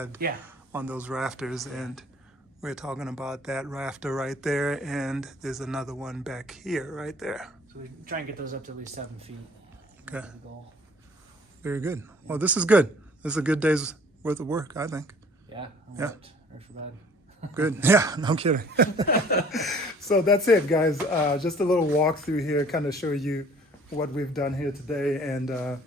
yeah, on those rafters. And we're talking about that rafter right there, and there's another one back here, right there. so we try and get those up to at least 7 feet. Okay. That's the goal. Very good. Well, this is good. This is a good day's worth of work, I think. Yeah. Yeah. Right for bed. Good. Yeah, no kidding. So that's it, guys. Just a little walkthrough here, kind of show you what we've done here today, and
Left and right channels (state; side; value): normal; both; correlation 0.53